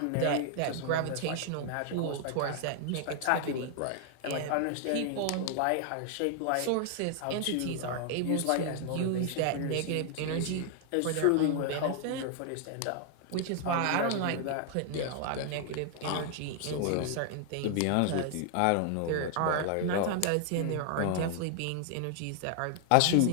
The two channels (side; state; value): both; different; correlation 0.00